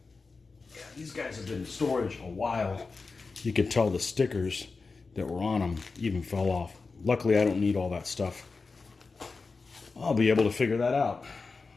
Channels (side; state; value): right; quieter; 4.3 dB